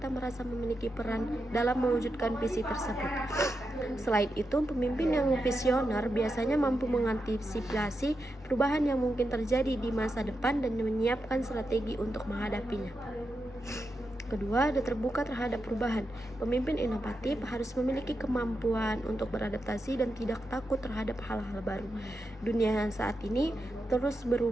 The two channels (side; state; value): both; normal; correlation 0.87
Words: merasa memiliki peran dalam mewujudkan visi tersebut. Selain itu, pemimpin yang visioner biasanya mampu mengantisipasi perubahan yang mungkin terjadi di masa depan dan menyiapkan strategi untuk menghadapinya. Kedua, ada terbuka terhadap perubahan. Pemimpin inovatif harus memiliki kemampuan untuk beradaptasi dan tidak takut terhadap hal-hal baru. Dunia saat ini terus